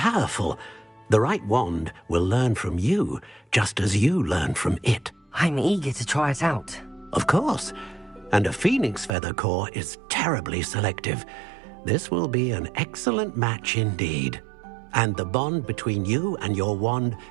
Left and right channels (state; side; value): drops out; left; at 9.1 s